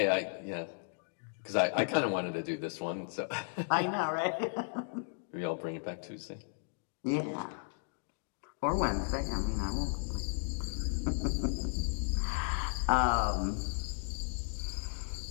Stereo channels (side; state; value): right; silent; digital silence